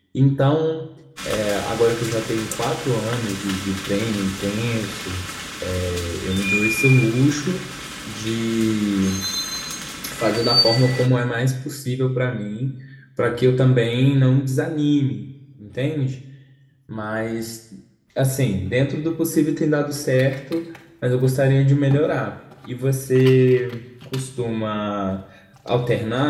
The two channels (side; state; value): both; identical; correlation 1.00